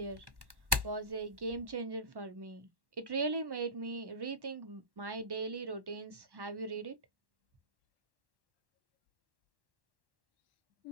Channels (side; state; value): left; late; 1.1 ms